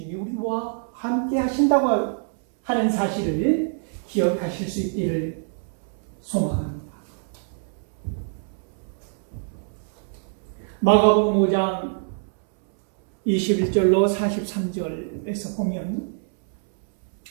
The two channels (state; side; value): silent; left; 62 dB below the other